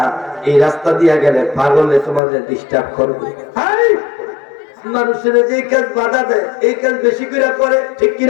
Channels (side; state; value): right; drops out; at 2.2 s